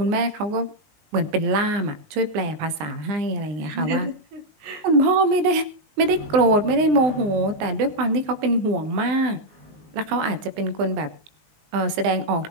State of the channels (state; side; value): late; left; 19 ms